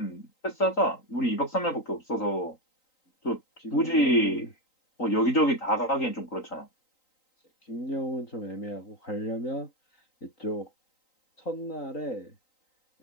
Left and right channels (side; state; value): right; late; 3.9 ms